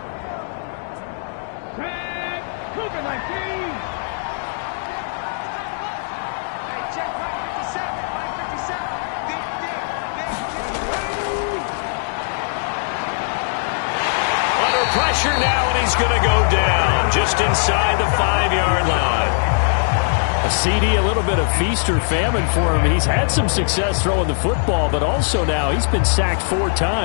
Under pressure now, and he's going to go down just inside the 5-yard line. A CD, a little bit of feast or famine for him. He's had some success throwing the football, but also now he's been sacked 4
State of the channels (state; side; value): silent; right; digital silence